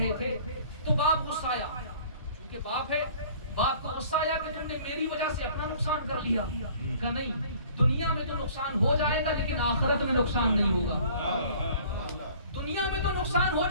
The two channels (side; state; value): both; inverted; correlation -0.51